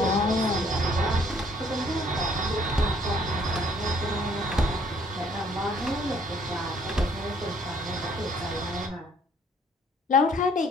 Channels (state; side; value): normal; both; correlation 0.62